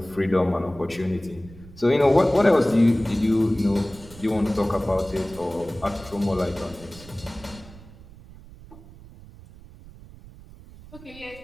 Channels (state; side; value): noise; right; rumble, 19 dB below the sound